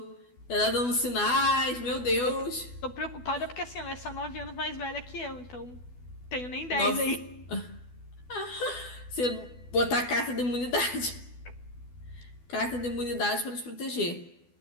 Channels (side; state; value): right; late; 12 ms